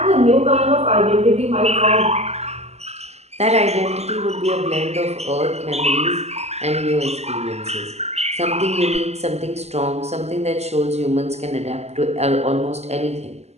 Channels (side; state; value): left; late; 0.31 ms